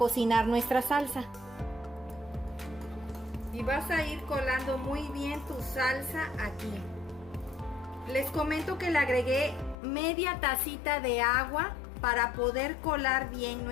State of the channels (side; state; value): right; drops out; at 9.8 s